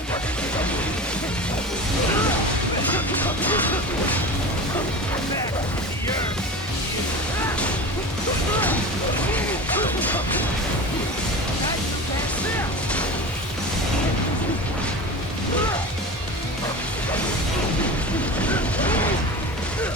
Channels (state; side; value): normal; both; correlation 0.31